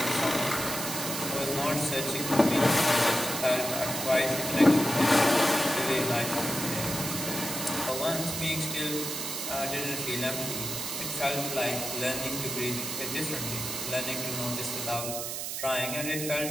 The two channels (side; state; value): right; noise; hiss, 4 dB below the sound